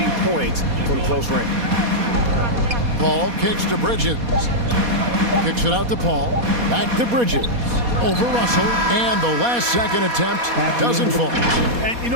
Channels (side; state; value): left; late; 4.2 ms